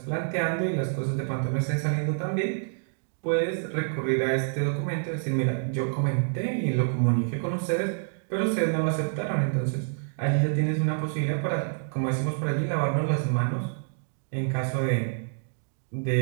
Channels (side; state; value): left; silent; digital silence